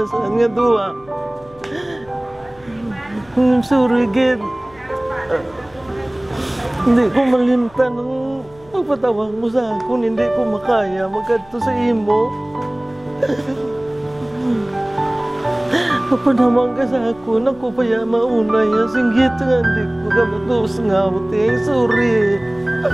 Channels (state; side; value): noise; left; hum, 26 dB below the sound